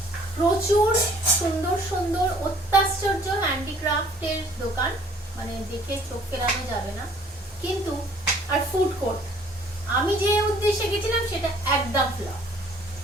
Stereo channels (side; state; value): both; normal; correlation 0.57